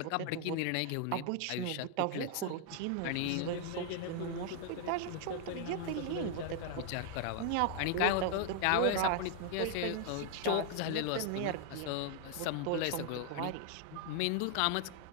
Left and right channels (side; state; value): both; different; correlation 0.00